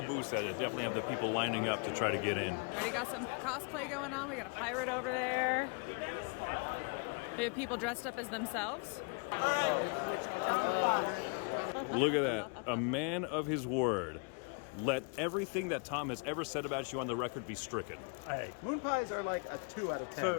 booths that definitely have the people lining up to try to get in. Already got some cosplay going on. We got a pirate over there. We have people dressed up as themselves. Look at that. A man of his word. let everything that Tom has ever said about you on the record be stricken. Hey, Moon pies are like a 2 out of 10.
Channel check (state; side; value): quieter; right; 37.3 dB